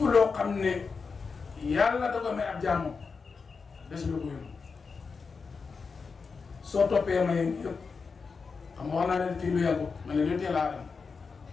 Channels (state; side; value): quieter; right; 5.0 dB